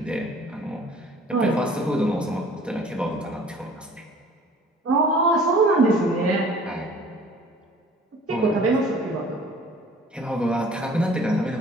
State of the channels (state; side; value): normal; both; correlation 0.50